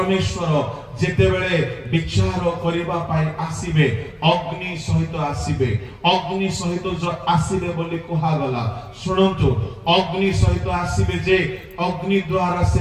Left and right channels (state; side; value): identical; both; correlation 1.00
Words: ଯେତେବେଳେ ବିଚାର କରିବା ପାଇଁ ଆସିବେ, ଅଗ୍ନି ସହିତ ଆସିବେ। ଅଗ୍ନି ସହିତ ଆସିବେ ବୋଲି କୁହାଗଲା। ଶୁଣନ୍ତୁ, ଅଗ୍ନି ସହିତ ଆସିବେ ଯେ ଅଗ୍ନି ଦ୍ୱାରା ସେ